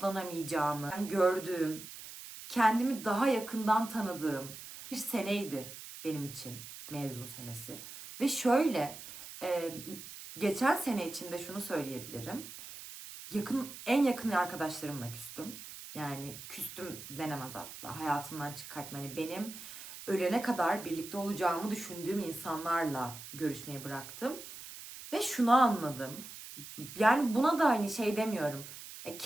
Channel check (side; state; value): right; noise; hiss, 13 dB below the sound